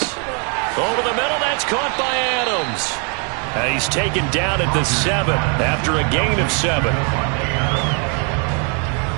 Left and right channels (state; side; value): quieter; left; 37.6 dB